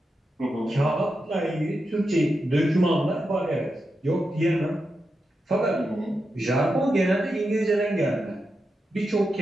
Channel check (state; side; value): normal; both; correlation 0.88